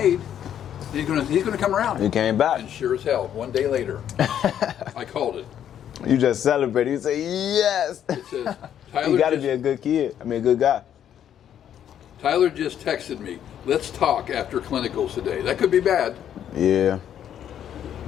He's going to come around. You came back. And sure as hell, one day later, I called it. You just celebrated. You say, yes. It says, Tyler You got to be a good kid. I mean, a good guy. Tyler just texted me. Let's talk after clinicals today. That could be bad. Yeah.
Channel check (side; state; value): right; quieter; 9.9 dB